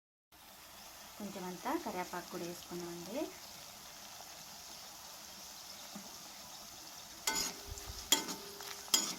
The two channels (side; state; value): both; identical; correlation 1.00